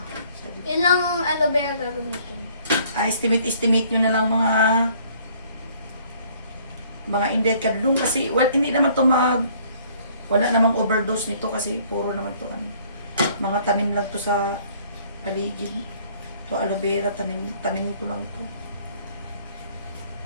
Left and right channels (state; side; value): inverted; both; correlation -0.59